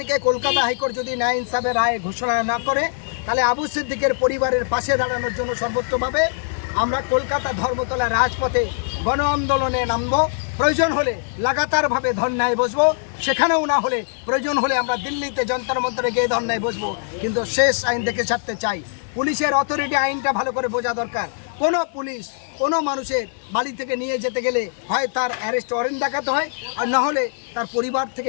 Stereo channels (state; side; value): silent; right; digital silence